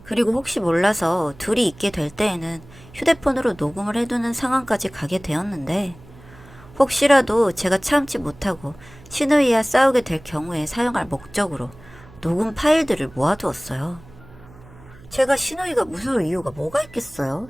그리고 혹시 몰라서 둘이 있게 될 때에는 휴대폰으로 녹음을 해두는 상황까지 가게 되었는데 혹시라도 제가 참지 못하고 시누이와 싸우게 될 경우에 사용할 목적으로 녹음 파일들을 모아두었어요. 제가 시누이가 무서울 이유가 뭐가 있겠어요?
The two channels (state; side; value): noise; right; hum, 22 dB below the sound